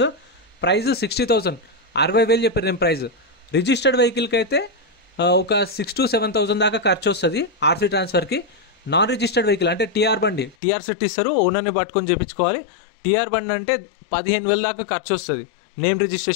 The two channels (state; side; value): drops out; right; at 10.6 s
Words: ప్రైస్ 60,000 60,000 చెప్పారు నేను ప్రైస్ రిజిస్టర్డ్ వెహికల్కి అయితే ఒక 6,000 to 7,000 దాకా ఖర్చు వస్తుంది ఆర్సీ ట్రాన్స్ఫర్కి నాన్ రిజిస్టర్డ్ వెహికల్ అంటే టీఆర్ బండి టీఆర్ సెట్ ఇస్తారు ఓనర్ని పట్టుకొని చేయించుకోవాలి టీఆర్ బండి అంటే 15,000 దాకా ఖర్చు వస్తుంది నేమ్